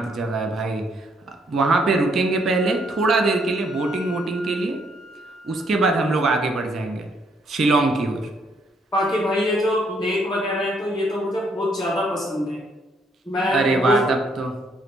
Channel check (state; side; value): normal; both; correlation 0.70